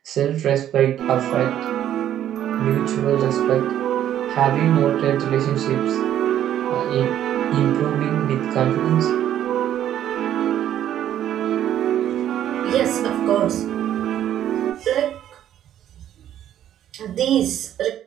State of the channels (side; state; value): left; quieter; 11.1 dB